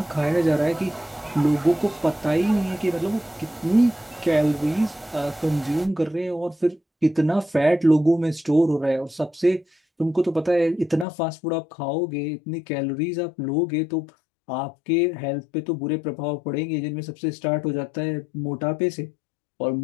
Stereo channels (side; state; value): right; drops out; at 11.1 s